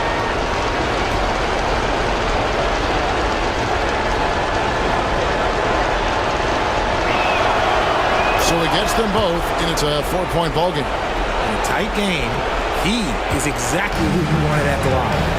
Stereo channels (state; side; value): identical; both; correlation 1.00